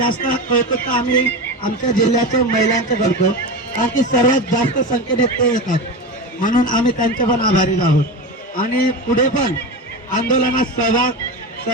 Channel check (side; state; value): both; normal; correlation 0.23